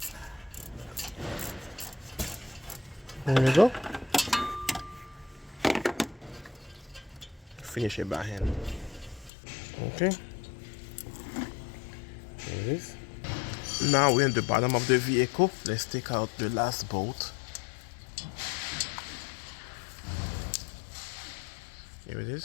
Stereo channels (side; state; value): right; drops out; at 9.3 s